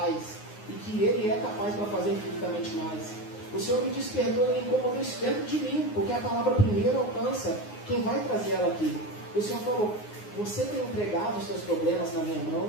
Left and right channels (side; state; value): right; late; 9.6 ms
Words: e que Ele é capaz para fazer infinitamente mais. O Senhor me despertou e incomodou isso dentro de mim, porque a palavra primeiro alcança quem vai trazer ela aqui. O Senhor falou: você tem entregado os seus problemas na minha